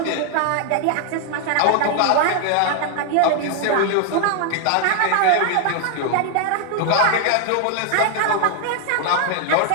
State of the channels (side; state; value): both; different; correlation 0.00